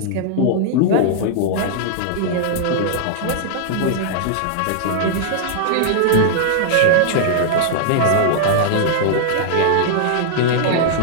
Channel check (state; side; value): different; both; correlation -0.01